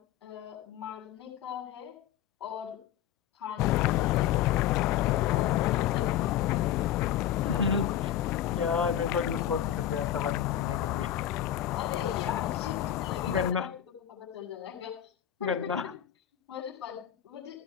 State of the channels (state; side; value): quieter; right; 10.9 dB